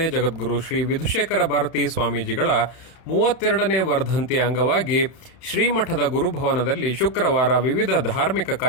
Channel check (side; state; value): right; late; 31 ms